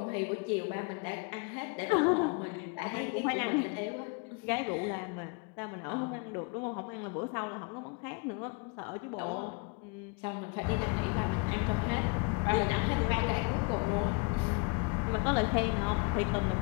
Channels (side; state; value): right; quieter; 29.8 dB